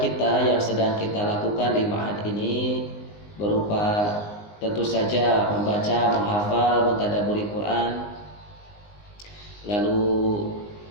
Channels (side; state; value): right; late; 19 ms